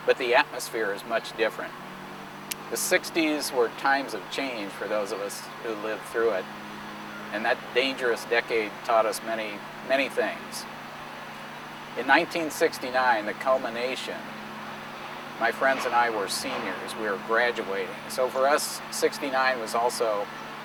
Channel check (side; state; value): both; identical; correlation 1.00